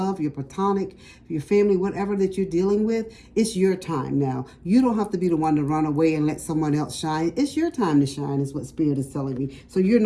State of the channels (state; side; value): identical; both; correlation 1.00